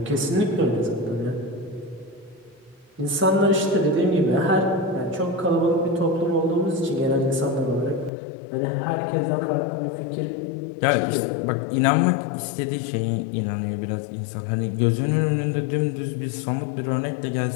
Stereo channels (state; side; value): drops out; right; at 8.1 s